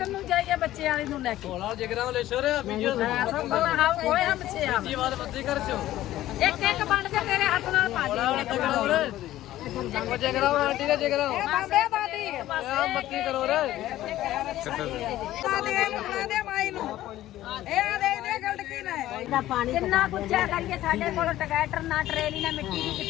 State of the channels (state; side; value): quieter; right; 14.4 dB